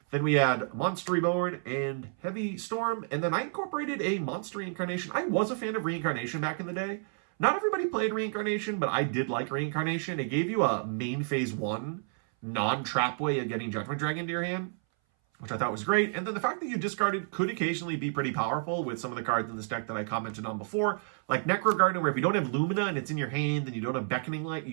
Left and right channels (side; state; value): left; silent; 58 dB below the other